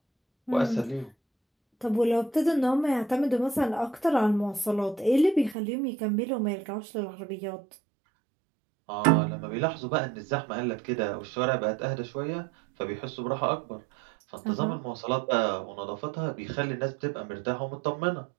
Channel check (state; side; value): drops out; left; at 5.6 s